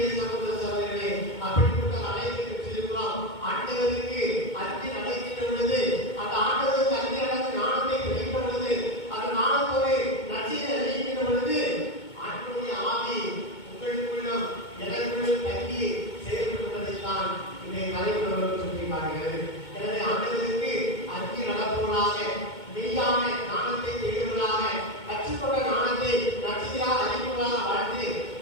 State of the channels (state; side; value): late; right; 2.2 ms